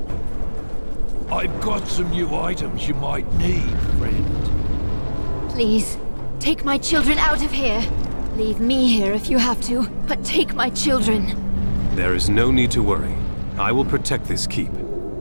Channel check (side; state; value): both; inverted; correlation -1.00